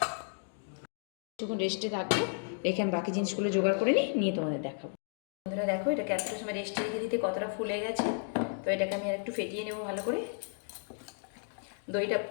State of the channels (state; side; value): silent; right; digital silence